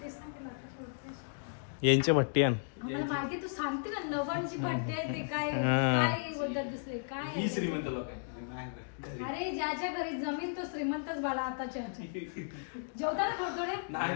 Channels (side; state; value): right; silent; digital silence